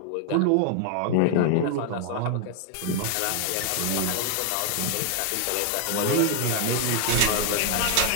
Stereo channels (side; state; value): both; different; correlation 0.00